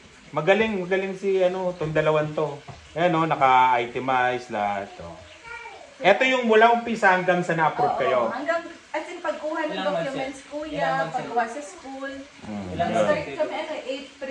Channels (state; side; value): identical; both; correlation 1.00